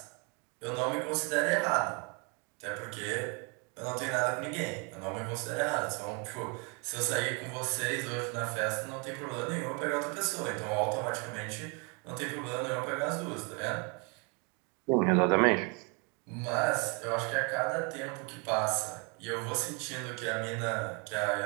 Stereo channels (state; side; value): quieter; left; 33.6 dB